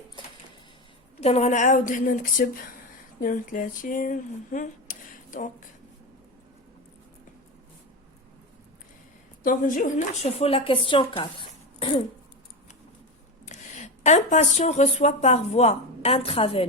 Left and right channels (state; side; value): normal; both; correlation 0.18